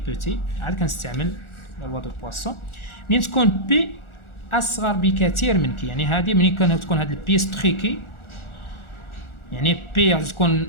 عاد كنستعمل لا لوا دو بواسون. منين تكون بي اصغر بكثير من كي، يعني هذه منين تكون هذه البيس تري كي، يعني بي غادي تكون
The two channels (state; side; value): late; right; 1.4 ms